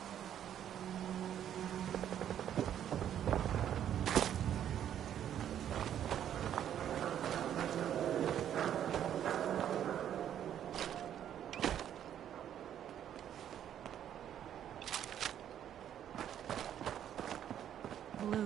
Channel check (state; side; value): quieter; left; 10.2 dB